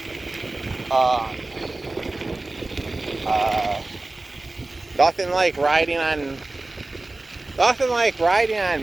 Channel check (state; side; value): quieter; left; 3.0 dB